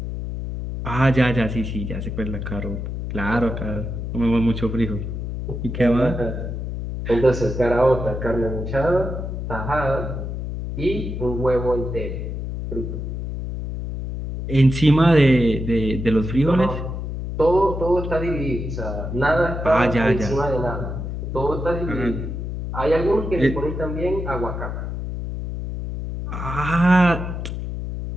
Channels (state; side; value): noise; left; hum, 5 dB below the sound